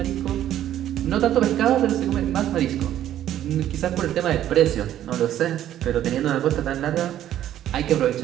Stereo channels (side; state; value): left; quieter; 11.8 dB